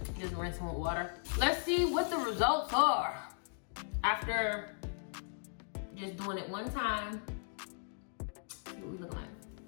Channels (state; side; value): silent; right; digital silence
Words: Just rinsing with water. Let's see what the results are after just doing it one time. See what we look like.